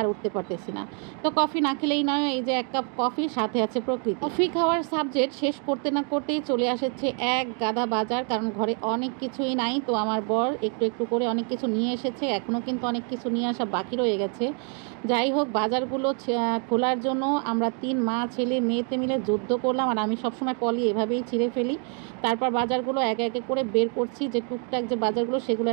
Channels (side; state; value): left; quieter; 39.9 dB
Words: আর উঠতে পারতেছি না। তো কফি না খেলেই নয়, এই যে এক কাপ কফি, সাথে আছে প্রকৃতি। কফি খাওয়ার সাবজেক্ট শেষ করতে না করতেই চলে আসছে এক গাদা বাজার, কারণ ঘরে অনেক কিছুই নাই। তো আমার বর একটু একটু করে অনেক কিছু নিয়ে এসেছে, এখনও কিন্তু অনেক কিছু নিয়ে আসা বাকি রয়ে গেছে। যাই হোক, বাজারগুলো খোলার জন্য আমরা 3 মা ছেলে মেয়েতে মিলে যুদ্ধ করলাম, আর আমি সবসময় পলি এভাবেই ছিঁড়ে ফেলি। তারপর বাজারগুলো একে একে করে বের করছি, যে টুকটাক যে বাজারগুলো সেগুলো